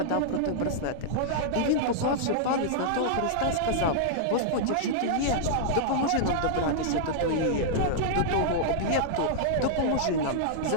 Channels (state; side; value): different; both; correlation -0.02